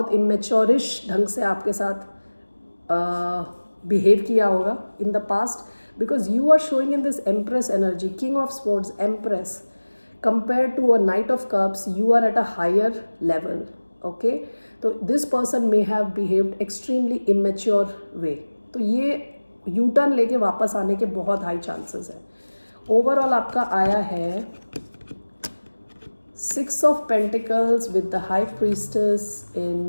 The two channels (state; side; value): inverted; both; correlation -1.00